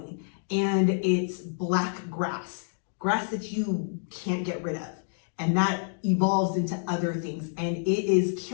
And it's black grass that you can't get rid of. And that evolves into other things. And it is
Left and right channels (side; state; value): right; silent; digital silence